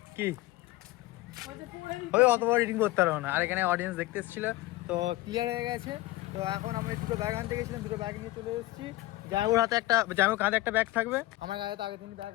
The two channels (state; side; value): quieter; right; 18.4 dB